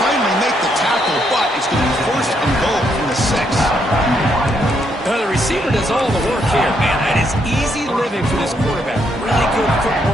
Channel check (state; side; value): normal; both; correlation 0.75